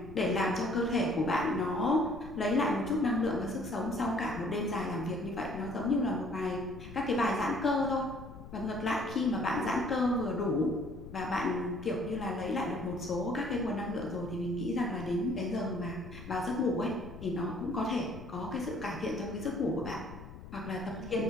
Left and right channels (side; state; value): left; noise; rumble, 14 dB below the sound